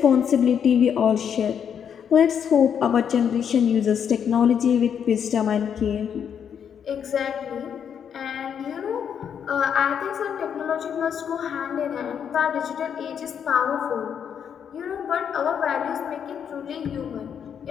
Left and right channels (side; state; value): right; quieter; 8.0 dB